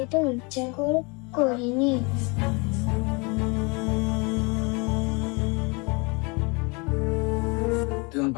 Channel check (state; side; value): quieter; right; 29.6 dB